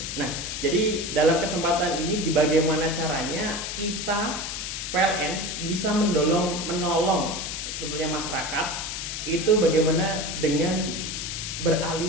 Nah, jadi dalam kesempatan ini bagaimana caranya kita PLN bisa menolong tentunya masyarakat itu bagaimana dengan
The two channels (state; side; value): noise; left; hiss, 5 dB below the sound